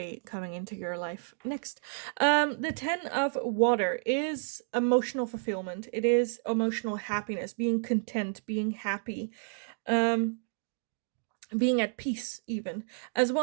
coming into your life next. The 10 of Water is emotional fulfillment. It is emotional happiness, being content, being happy. Being at peace, even, as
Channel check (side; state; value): left; silent; digital silence